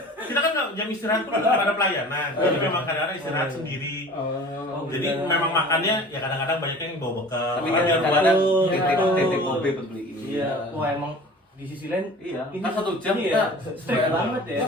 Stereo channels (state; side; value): normal; both; correlation 0.42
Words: kita kan jam istirahat pun nggak ada pelayanan. Jadi memang kadang-kadang istirahat sendiri. Jadi memang makannya ya kadang-kadang banyak yang bawa bekal. Tapi Oh, kan iya, kadang takut. titik kopi buat beli. Iya. Wah emang di sisi lain Iya, ini kan 1 jam iya, kita strict banget ya.